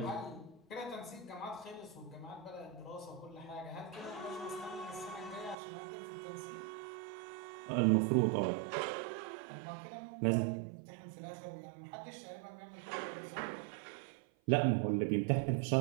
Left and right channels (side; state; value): left; drops out; at 5.6 s